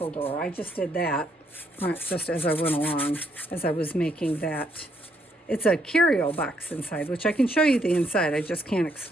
door. I just did that just as I went along, as I was making that. It's a curio box inside, which I can show you the inside. I just can't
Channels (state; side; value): normal; both; correlation 0.72